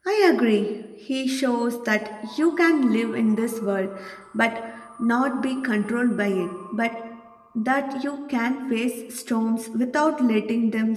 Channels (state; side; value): identical; both; correlation 1.00